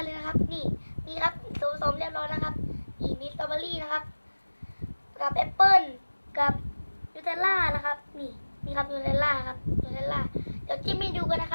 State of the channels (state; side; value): inverted; both; correlation -1.00